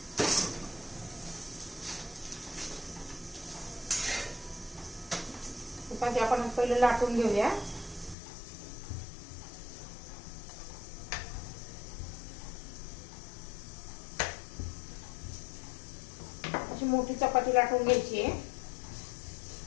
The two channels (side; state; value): right; drops out; at 8.2 s